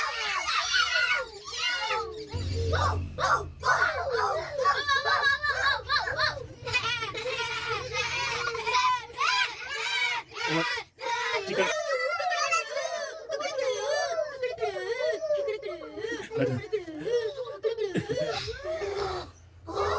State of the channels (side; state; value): both; identical; correlation 1.00